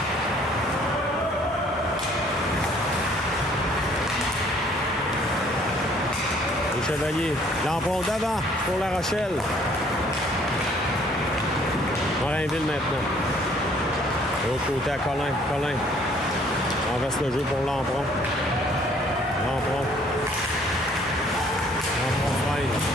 Les Chevaliers. L'emprunt d'avant pour La Rochelle. Morinville maintenant. De l'autre côté à Colin. Colin. On reste le jeu pour l'emprunt. L'emprunt. L'emprunt freine.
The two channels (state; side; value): normal; both; correlation 0.60